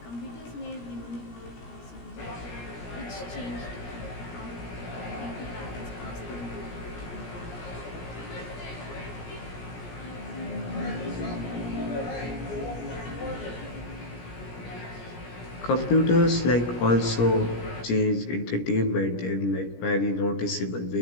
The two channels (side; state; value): right; late; 17 ms